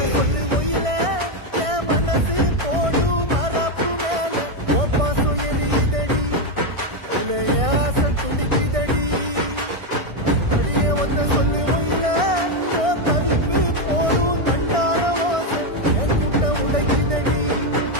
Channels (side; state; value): left; late; 1.6 ms